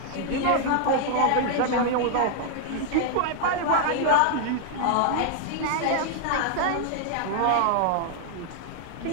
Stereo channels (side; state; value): both; different; correlation 0.00